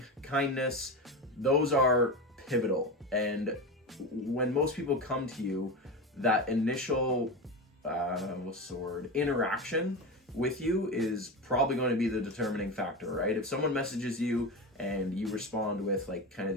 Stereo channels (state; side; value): normal; both; correlation 0.21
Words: kindness, those are pivotal. And when most people come to you, that initial interaction with you is probably going to be the determining factor, right? If someone messages you and you respond with kind of